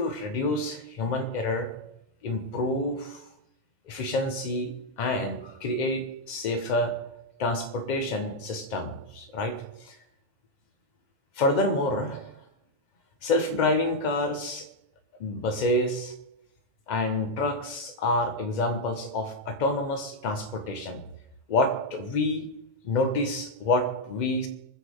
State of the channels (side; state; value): right; late; 2.1 ms